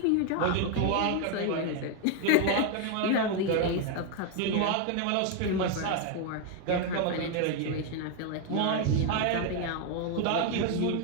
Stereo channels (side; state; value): both; different; correlation 0.01